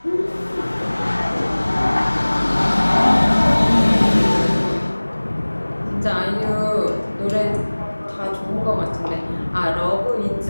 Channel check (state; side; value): inverted; both; correlation -1.00